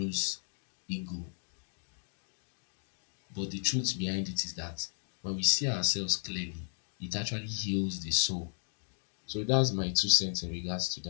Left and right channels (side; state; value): right; silent; 55 dB below the other